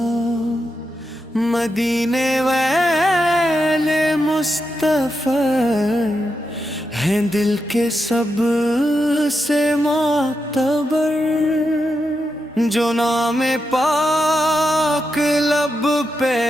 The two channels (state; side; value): normal; both; correlation 0.86